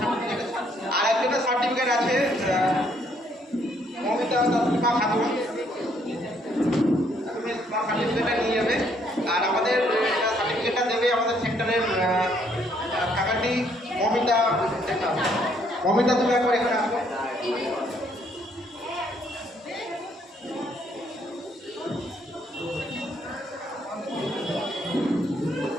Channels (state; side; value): normal; both; correlation 0.68